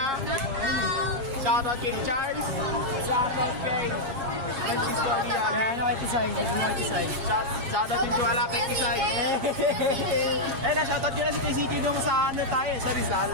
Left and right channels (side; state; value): left; late; 7.4 ms